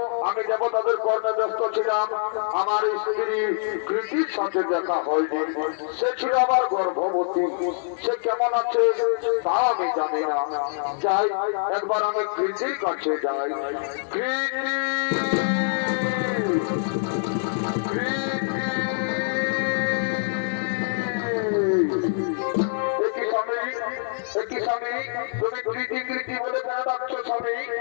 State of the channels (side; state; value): right; silent; digital silence